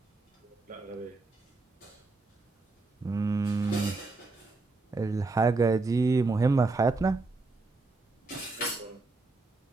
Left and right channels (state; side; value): quieter; left; 3.5 dB